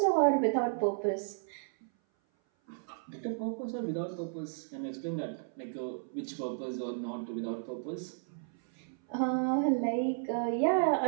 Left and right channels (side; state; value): left; silent; 56 dB below the other